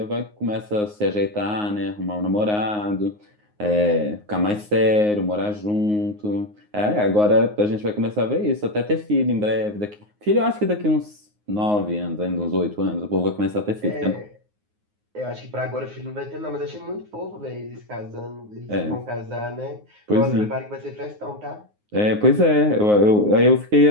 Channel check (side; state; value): left; late; 9.6 ms